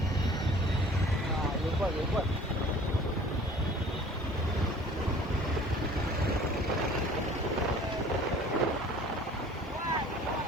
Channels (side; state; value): both; normal; correlation 0.49